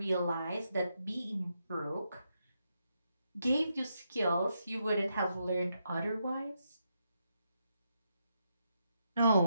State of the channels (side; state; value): both; inverted; correlation -0.82